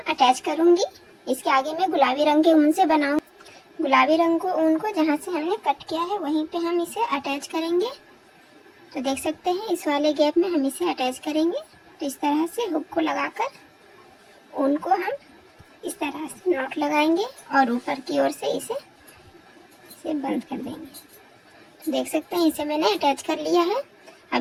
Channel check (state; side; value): identical; both; correlation 1.00